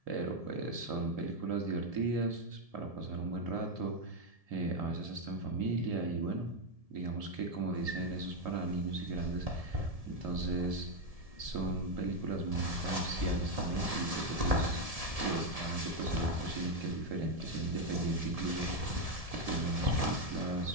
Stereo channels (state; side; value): late; left; 1.7 ms